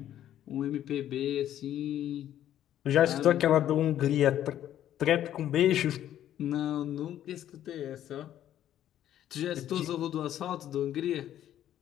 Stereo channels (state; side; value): quieter; right; 11.5 dB